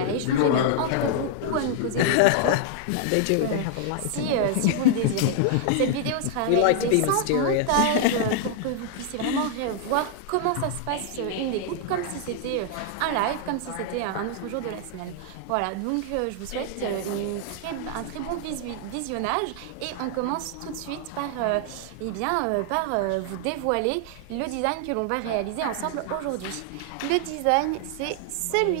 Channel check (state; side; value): different; both; correlation 0.00